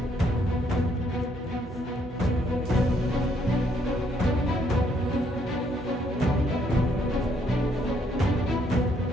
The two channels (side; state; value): both; normal; correlation 0.70